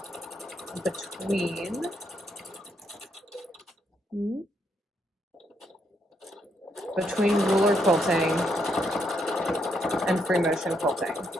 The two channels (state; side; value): normal; both; correlation 0.76